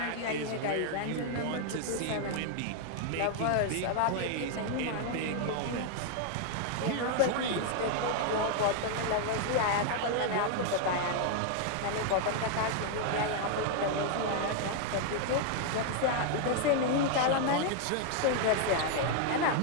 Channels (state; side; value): different; both; correlation 0.00